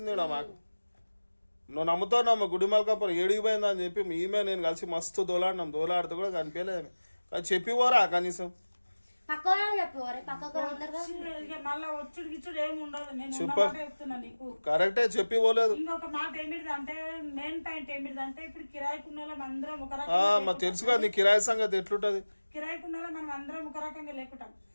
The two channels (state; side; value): inverted; both; correlation -1.00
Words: మాకు నువ్వు నమ్ముతావు నమ్మ గుడిమల్కాపురం ఏడిగిపోయిందా అని చెప్పి ఈమె నేను కలిసి మస్తు దోలాడితే కూడా కనిపించలేదు కానీ చెప్పి పోరా కనీసం కరెక్టే చెప్పి పోలేదు ఇంకొక మాట ఏమిటిదంటే మెయిన్ పాయింట్ ఏమిటిదంటే ఇప్పుడు కిరాయికున్న అందరం ఒక తెలుసు కదా నీ కిరాయి సంగతి ఎట్లుంటది కిరాయికున్న మనం అందరం ఒక రకంగా లేకుంటాం